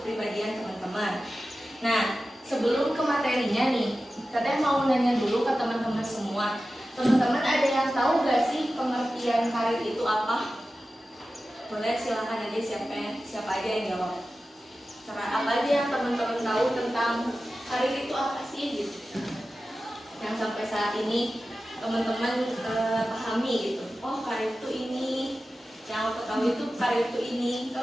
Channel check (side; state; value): both; normal; correlation 0.94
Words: teman-teman. Nah, sebelum ke materinya nih, Teteh mau nanya dulu ke teman-teman semua. Teman-teman ada yang tahu gak sih pengertian karir itu apa? Boleh silakan aja siapa aja yang jawab. Apa aja yang teman-teman tahu tentang karir itu apa sih gitu? Yang sampai saat ini teman-teman pahami gitu. Oh, karir itu ini. Yang aku tahu itu karir itu ini.